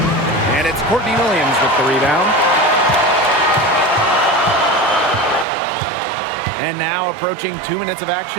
And it's Courtney Williams with the rebound. And now approaching 2 minutes of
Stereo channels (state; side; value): drops out; left; at 5.5 s